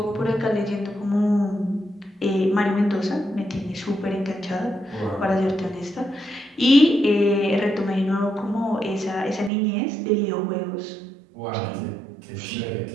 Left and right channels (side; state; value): left; drops out; at 9.5 s